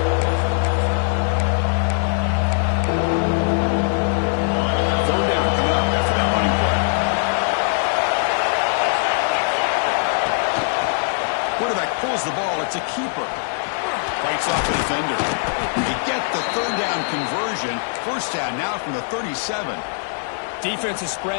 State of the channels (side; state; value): right; silent; 65 dB below the other